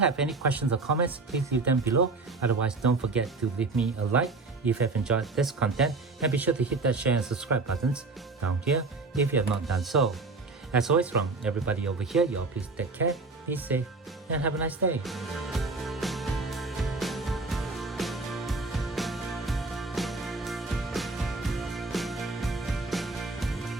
any questions or comments, please leave them below. Otherwise, don't forget to leave me a like if you have enjoyed this content, and be sure to hit that share and subscribe buttons down here if you have not done so. As always, from everybody over here, you all please take care, be safe, and have a nice day.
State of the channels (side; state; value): left; quieter; 3.7 dB